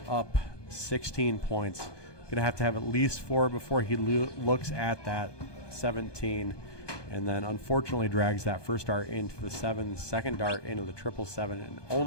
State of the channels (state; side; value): late; right; 1.2 ms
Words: up 16 points. Going to have at least 4 before he looks at that 17. And then unfortunately drags that first dart into the 7, second dart into the triple 7, and